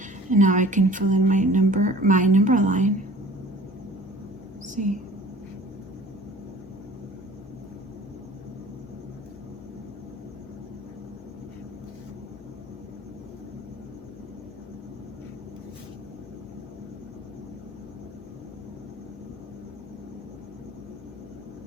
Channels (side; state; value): both; normal; correlation 0.47